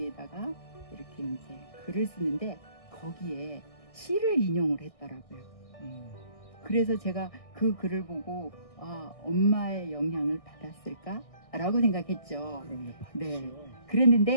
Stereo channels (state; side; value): late; right; 1.6 ms